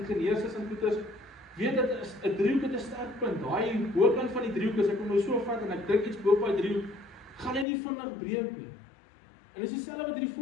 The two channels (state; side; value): drops out; right; at 7.7 s